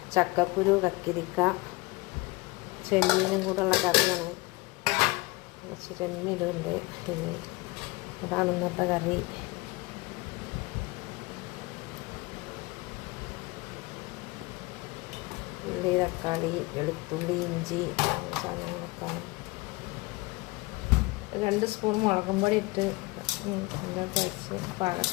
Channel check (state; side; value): quieter; right; 23.4 dB